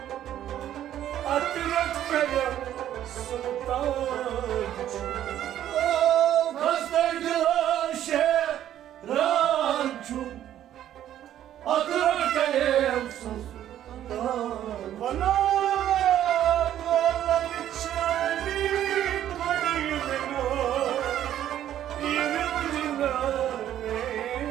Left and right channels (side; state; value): left; quieter; 11.5 dB